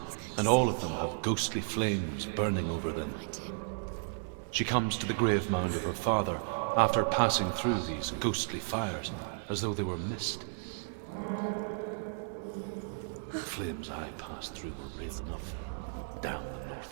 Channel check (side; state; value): left; silent; 55 dB below the other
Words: and all of them have ghostly flames burning over them. She comes to the grave mound of her father after passing through these ghostly fires, as though they were mist. The flames I passed through were real enough. Down the